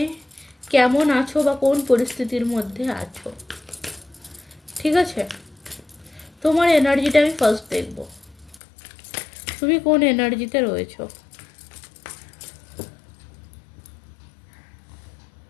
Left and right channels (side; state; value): right; drops out; at 8.6 s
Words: কেমন আছো বা কোন পরিস্থিতির মধ্যে আছো। ঠিক আছে, তোমার এনার্জিটা আমি ফার্স্ট দেখব, তুমি কোন এনার্জিতে রয়েছো।